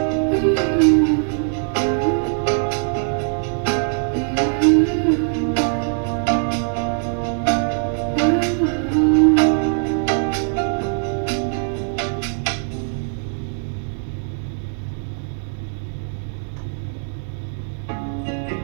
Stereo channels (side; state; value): left; silent; 57 dB below the other